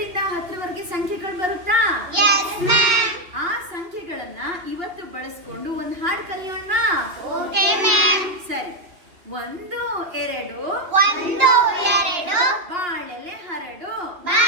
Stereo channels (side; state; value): left; late; 3.1 ms